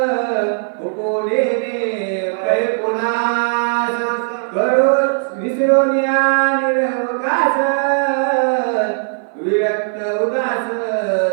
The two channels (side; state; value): left; silent; 56 dB below the other